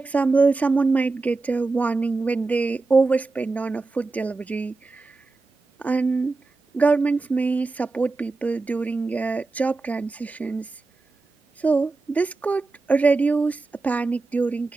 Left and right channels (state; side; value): quieter; left; 3.7 dB